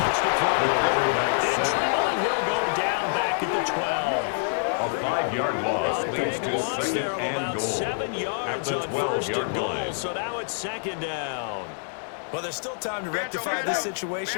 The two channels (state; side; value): silent; right; digital silence